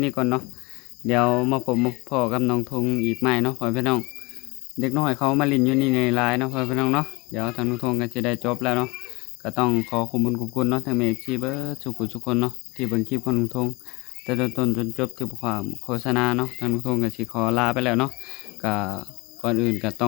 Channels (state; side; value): quieter; right; 25.0 dB